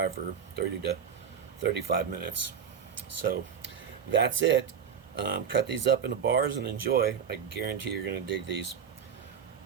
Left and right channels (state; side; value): quieter; left; 7.4 dB